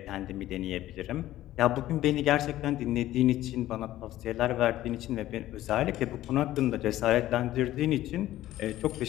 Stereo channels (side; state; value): right; quieter; 14.4 dB